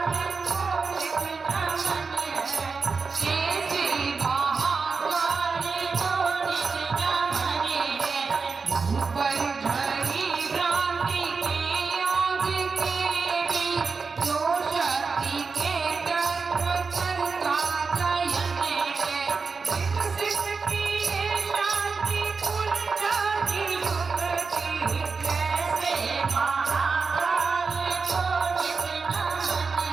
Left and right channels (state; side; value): quieter; left; 4.8 dB